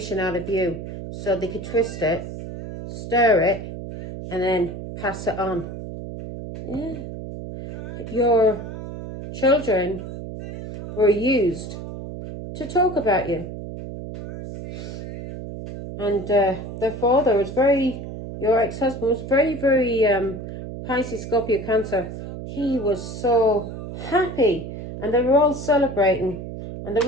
out of you. So they could twist it, stir it, and then pass it on. Yeah. Your children were used to talk about you. And their father was your ex-husband was very, Pisces, Scorpio, Cancer. He was so happy. And they were all celebrating. And they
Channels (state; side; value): noise; right; hum, 9 dB below the sound